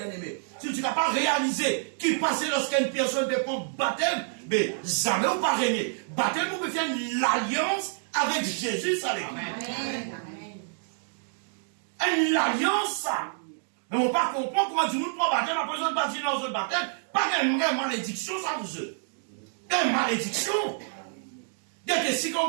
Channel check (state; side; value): silent; left; digital silence